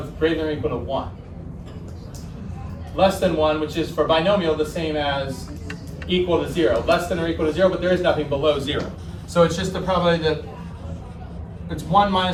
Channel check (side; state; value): both; identical; correlation 1.00